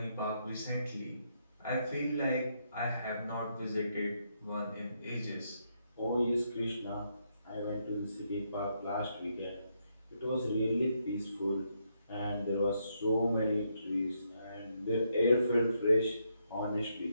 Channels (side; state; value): both; inverted; correlation -0.78